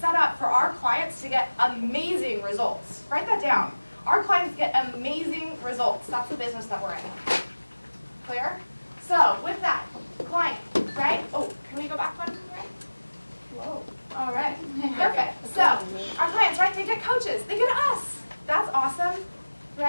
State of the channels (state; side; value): inverted; both; correlation -1.00